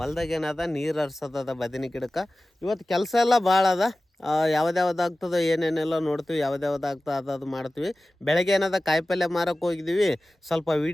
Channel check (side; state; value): both; normal; correlation 0.96